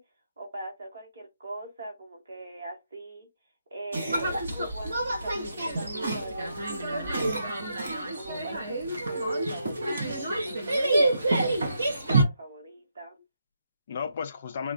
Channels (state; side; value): inverted; both; correlation -0.79